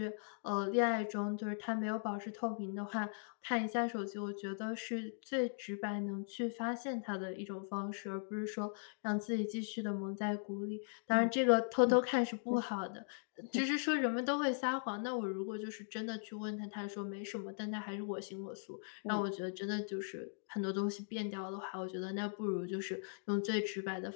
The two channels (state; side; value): silent; right; digital silence